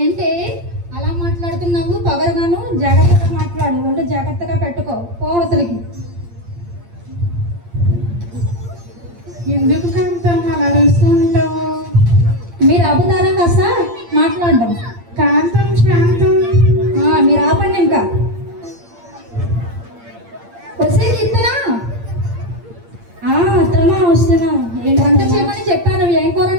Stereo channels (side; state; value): left; late; 8.7 ms